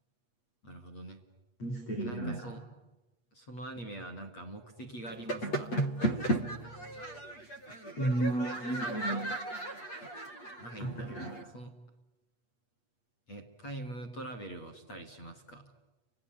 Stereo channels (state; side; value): late; right; 8.4 ms